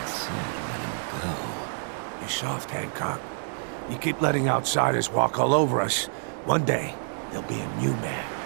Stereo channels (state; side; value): silent; left; digital silence